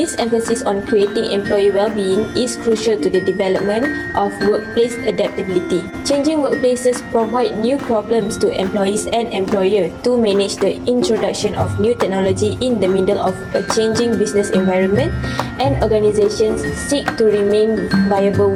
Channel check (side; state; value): both; identical; correlation 1.00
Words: emphasis on creating employee well-being is crucial to the development of workplace adaptability. Changing workplaces provide new problems to employees and employers to manage the introduction of new technology in the middle of a changing business environment, and organizations seek to remain viable